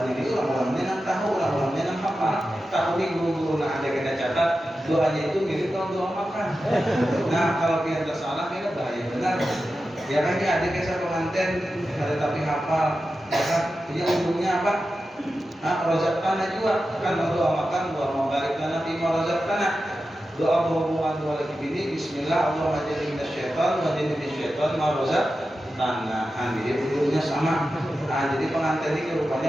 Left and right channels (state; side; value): normal; both; correlation 0.92